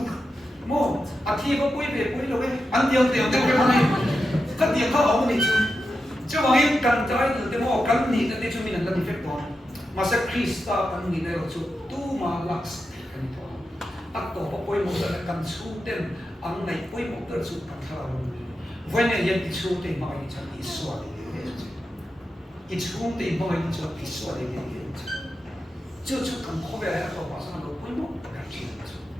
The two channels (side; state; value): both; normal; correlation 0.89